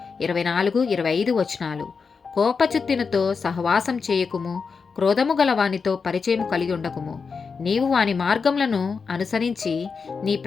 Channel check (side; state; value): right; quieter; 5.2 dB